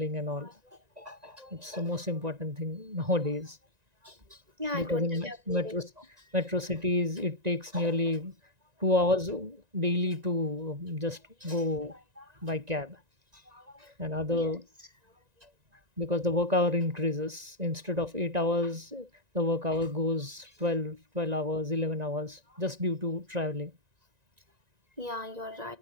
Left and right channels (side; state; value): left; late; 1.9 ms